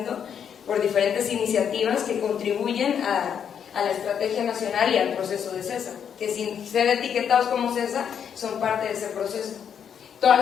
por diferentes iniciativas que contribuyen a la estrategia nacional y al proceso de CESA, que sin ser etiquetados como CESA son parte de ese proceso. Todas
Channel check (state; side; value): quieter; right; 8.0 dB